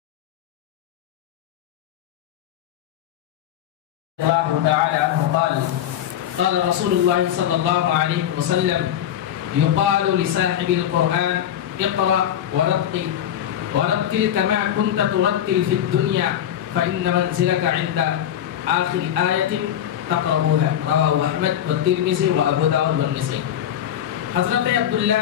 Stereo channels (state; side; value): quieter; right; 10.5 dB